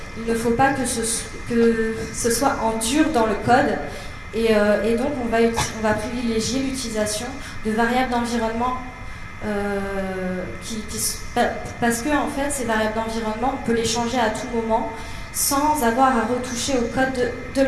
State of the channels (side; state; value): both; identical; correlation 1.00